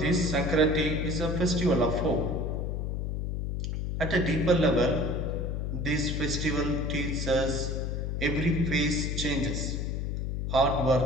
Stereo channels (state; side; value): noise; left; hum, 2 dB below the sound